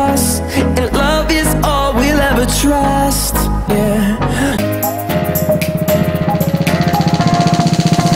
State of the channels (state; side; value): identical; both; correlation 1.00